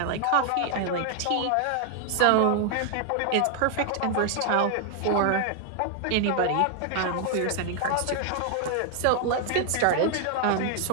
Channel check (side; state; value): both; different; correlation 0.00